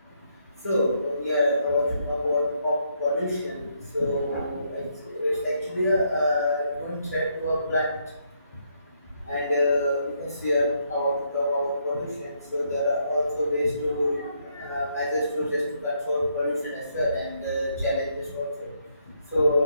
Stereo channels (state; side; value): inverted; both; correlation -0.74